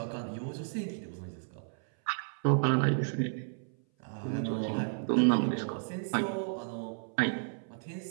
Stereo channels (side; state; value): left; silent; 56 dB below the other